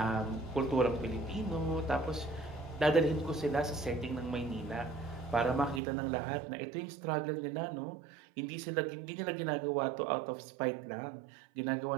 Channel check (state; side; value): drops out; left; at 5.8 s